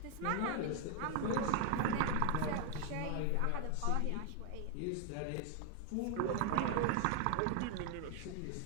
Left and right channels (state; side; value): different; both; correlation 0.00